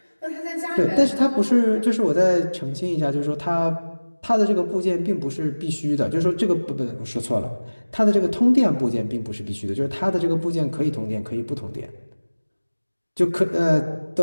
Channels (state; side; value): inverted; both; correlation -1.00